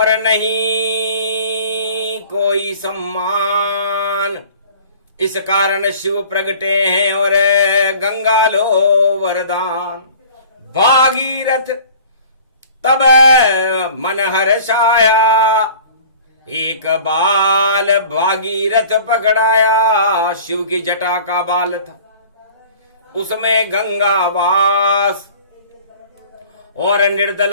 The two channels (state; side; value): inverted; both; correlation -0.47